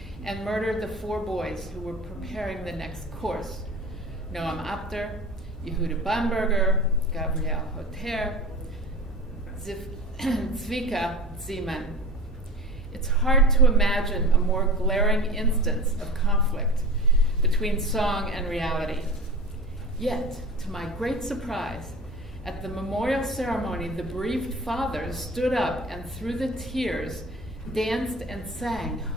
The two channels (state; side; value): normal; both; correlation 0.35